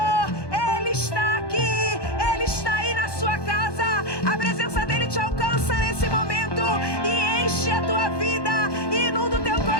Ele está aqui, Ele está aí na sua casa. A presença dEle te alcança nesse momento e enche a tua vida, inunda o teu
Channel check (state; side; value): late; right; 1.2 ms